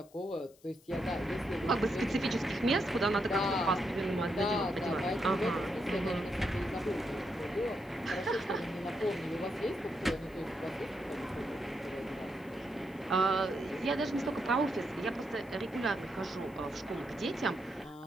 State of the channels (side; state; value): left; noise; hiss, 28 dB below the sound